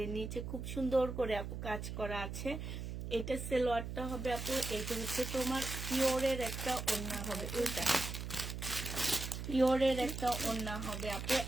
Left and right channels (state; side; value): noise; right; hum, 6 dB below the sound